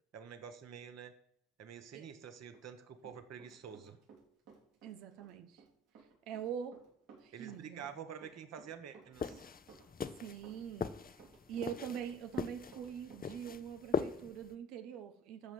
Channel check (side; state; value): both; normal; correlation 0.47